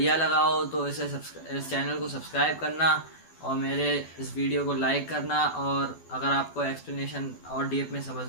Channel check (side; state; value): right; late; 12 ms